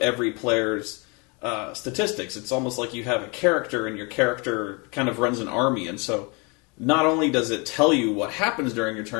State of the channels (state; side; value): quieter; right; 30.5 dB